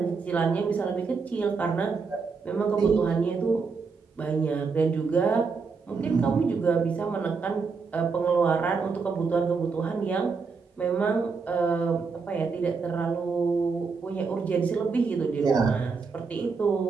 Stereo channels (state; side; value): quieter; left; 4.9 dB